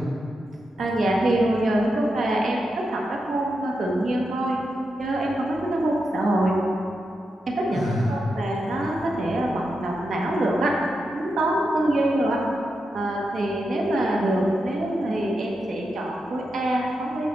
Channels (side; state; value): both; normal; correlation 0.87